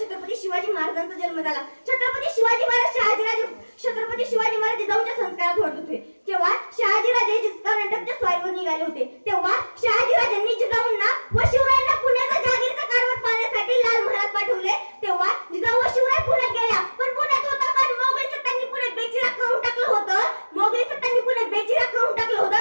छत्रपती शिवाजी महाराजांचा जन्म झाला. छत्रपती शिवाजी महाराज छत्रपती शिवाजी महाराज जिजाऊच्या संस्कारात वाढत होते. जेव्हा शहाजीराजे कर्नाटकच्या स्वारीवर निघाले होते तेव्हा शहाजीराजांनी जिजाऊंना व शिवरायांना पुण्याचा जहागीरचा कारभार पाहण्यासाठी लाल महालात पाठवले. तेव्हा जिजाऊ व शिवराय पुण्यात गेल्या. पण पुण्यात होता कारण मोगली सत्तांनी पुण्यात बेचिराग करून टाकलं होतं. मोगली सत्तांनी पुण्यात बेचिराग करून टाकलं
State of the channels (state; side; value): inverted; both; correlation -1.00